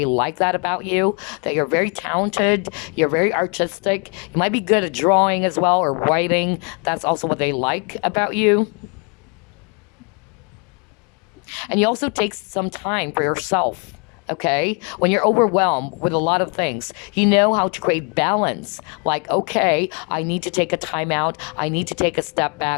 like that about you, that you're very talented, you're very artistic. You might be good at drawing as well or writing. That's also what they like about you. And you also take some time for yourself. Okay, when you're overwhelmed with a lot of things, you know how to create balance. Like, okay, I need to take a time out. I need to take a step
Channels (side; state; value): right; quieter; 36.5 dB